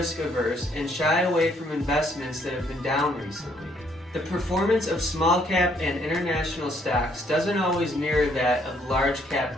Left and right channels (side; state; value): both; normal; correlation 0.68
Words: averse and shy away from investments that have been down recently. The performance of small cap and international stocks doesn't always mirror that of large cap